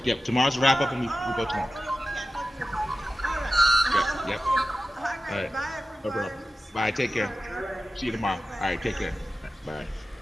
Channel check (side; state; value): both; normal; correlation 0.94